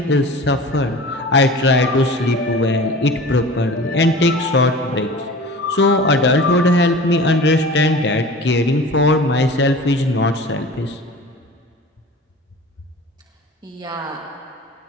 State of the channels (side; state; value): both; normal; correlation 0.39